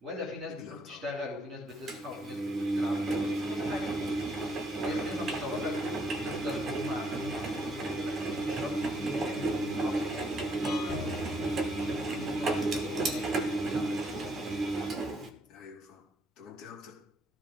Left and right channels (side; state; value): both; normal; correlation 0.71